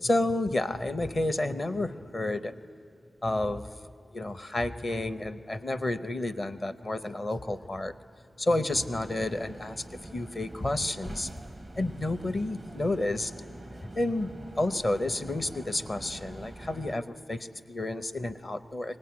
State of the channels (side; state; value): both; normal; correlation 0.93